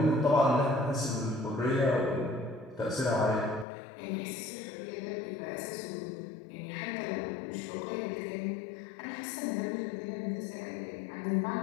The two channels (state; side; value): drops out; right; at 3.7 s